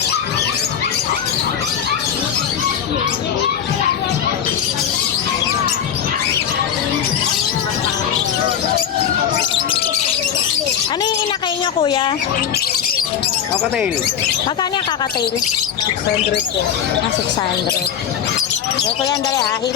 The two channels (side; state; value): right; quieter; 8.8 dB